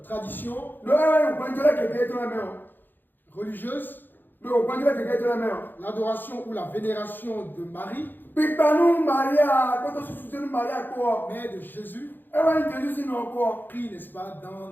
traditions religieuses, l'adoration ou la vénération de Marie, mais de Jésus, pris, n'est-ce pas, dans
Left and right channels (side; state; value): right; late; 0.091 ms